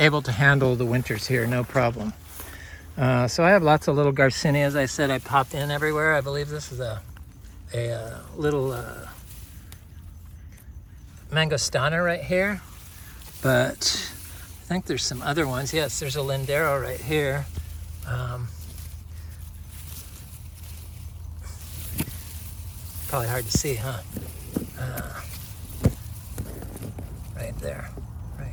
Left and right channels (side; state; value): both; identical; correlation 1.00